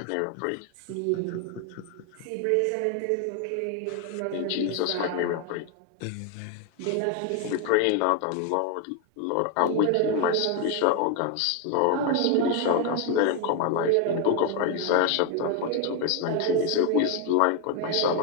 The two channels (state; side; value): different; both; correlation 0.01